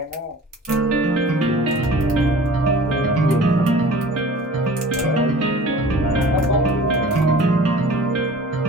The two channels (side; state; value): both; normal; correlation 0.43